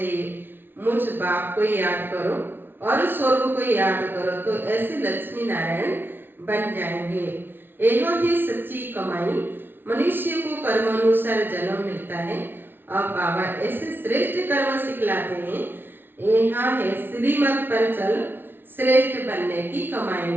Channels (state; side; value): late; left; 0.10 ms